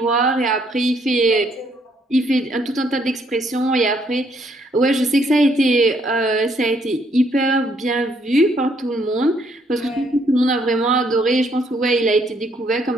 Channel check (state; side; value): normal; both; correlation 0.69